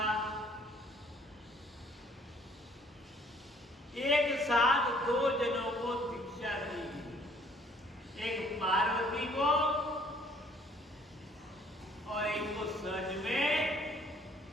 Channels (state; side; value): normal; both; correlation 0.59